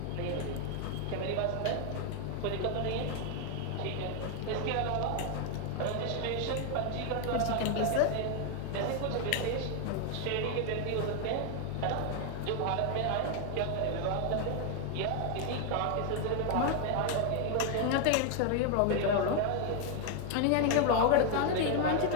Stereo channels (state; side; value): different; both; correlation 0.00